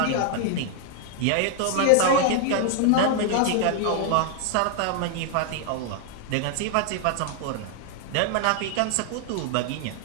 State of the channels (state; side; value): different; both; correlation 0.00